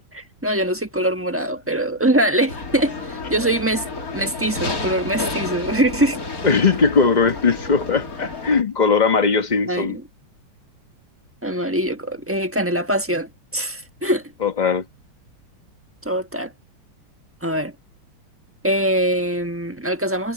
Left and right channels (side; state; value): both; normal; correlation -0.09